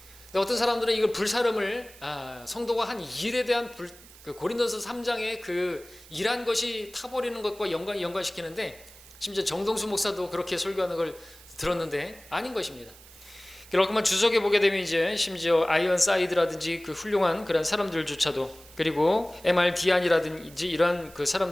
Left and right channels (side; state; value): right; noise; hiss, 21 dB below the sound